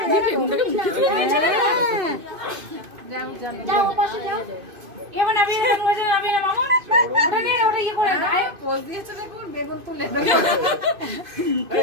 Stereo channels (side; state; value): left; late; 2.5 ms